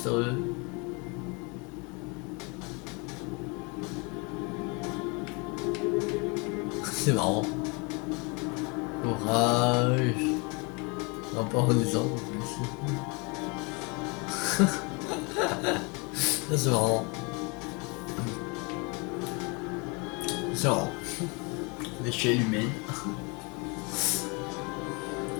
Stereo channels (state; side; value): quieter; right; 30.6 dB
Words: C'est marrant. Courage. Non, pas en disant. C'est marrant. C'est marrant. L'échelle humaine.